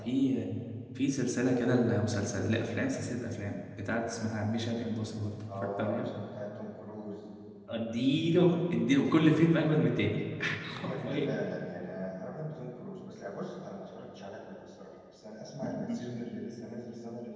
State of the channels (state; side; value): identical; both; correlation 1.00